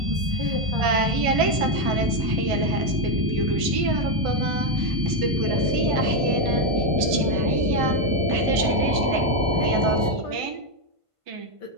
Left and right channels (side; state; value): left; late; 1.5 ms